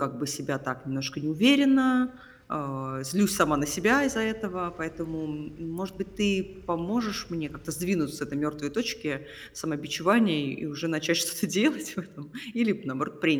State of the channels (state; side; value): identical; both; correlation 1.00